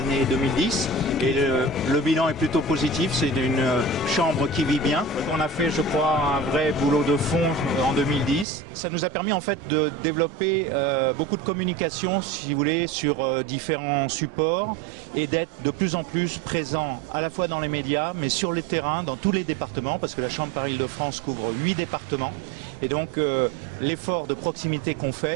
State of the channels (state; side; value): drops out; left; at 8.5 s